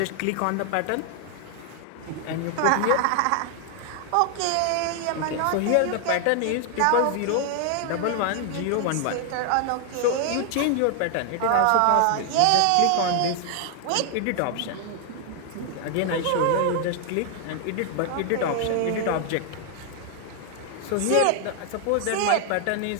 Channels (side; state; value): both; different; correlation 0.00